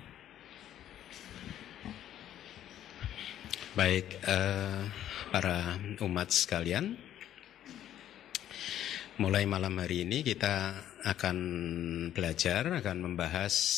Baik, para umat sekalian, mulai malam hari ini kita akan akan membahas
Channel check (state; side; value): quieter; right; 11.4 dB